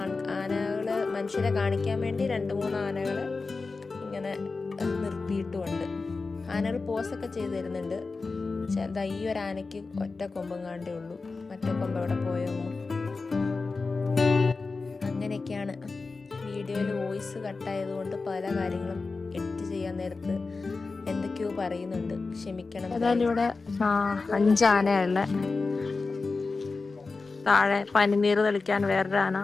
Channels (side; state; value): right; quieter; 4.0 dB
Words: ആനകൾ മനുഷ്യരെ കാണിക്കാൻ വേണ്ടി 2-3 ആനകൾ ഇങ്ങനെ നിർത്തിയിട്ടുമുണ്ട്. ആനകൾ പോസൊക്കെ ചെയ്ത് തരുന്നുണ്ട്. ചെറുതാ ഈ ഒരു ആനയ്ക്ക് ഒറ്റ കൊമ്പം കാണ്ടേ ഉള്ളൂ, മറ്റേ കൊമ്പ് എവിടെ പോയോ. അങ്ങനെയൊക്കെയാണ്. വീഡിയോയിൽ വോയിസ് കട്ടായതുകൊണ്ട് പല കാര്യങ്ങളും എഡിറ്റ് ചെയ്യാൻ നേരത്ത് എന്തൊക്കെയോ പറയുന്നുണ്ട്, ക്ഷമിക്കണം. ഏതായാലും ഇവിടെ 5 ആനയുള്ള, താഴെ പനിനീർ തെളിക്കാൻ വേറൊരു ആന,